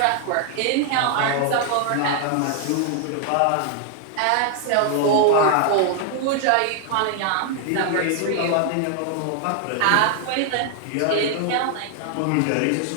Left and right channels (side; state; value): both; different; correlation 0.00